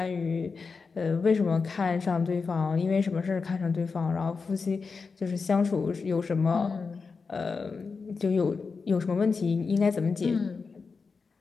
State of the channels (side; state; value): right; quieter; 4.8 dB